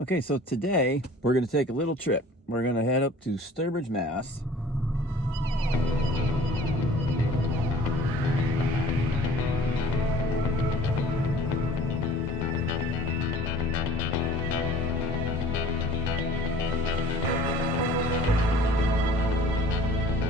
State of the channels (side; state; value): both; normal; correlation 0.48